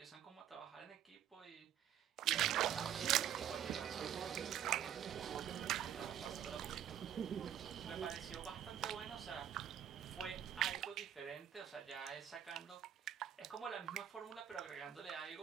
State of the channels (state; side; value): quieter; left; 10.1 dB